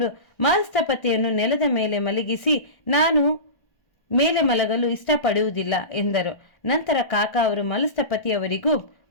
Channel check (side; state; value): right; late; 1.3 ms